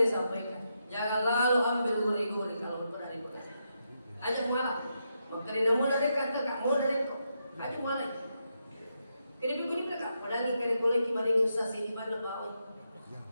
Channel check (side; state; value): both; inverted; correlation -0.83